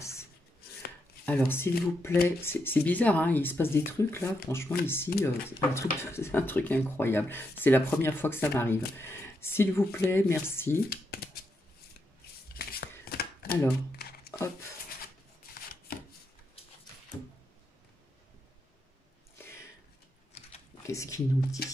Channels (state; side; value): normal; both; correlation 0.82